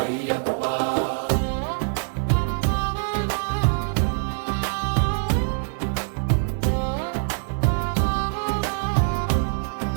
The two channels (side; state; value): left; silent; digital silence